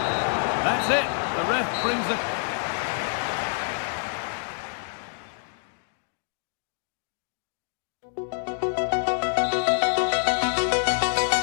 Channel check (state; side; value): silent; right; digital silence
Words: That's it. The ref brings it.